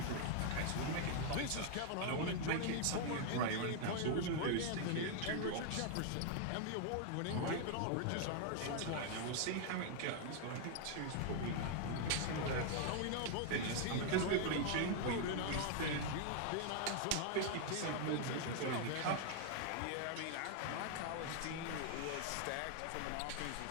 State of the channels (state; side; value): different; both; correlation 0.00